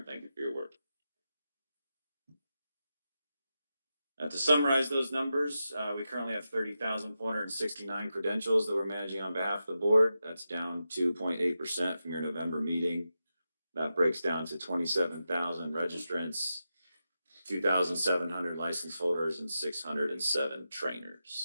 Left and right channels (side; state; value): both; inverted; correlation -0.90